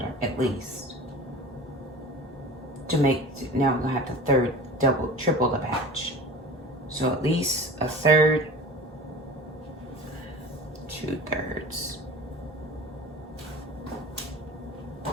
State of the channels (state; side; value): normal; both; correlation 0.37